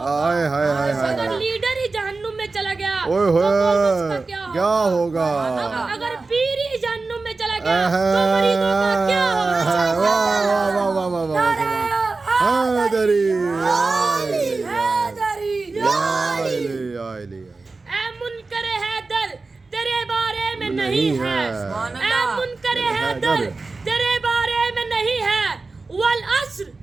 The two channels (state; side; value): quieter; left; 3.8 dB